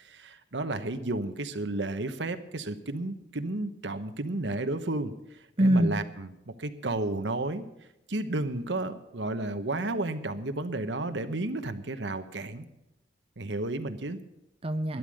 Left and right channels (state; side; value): normal; both; correlation 0.52